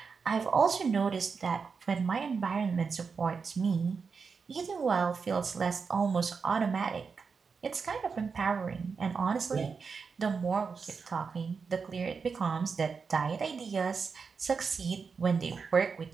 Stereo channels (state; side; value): quieter; left; 5.3 dB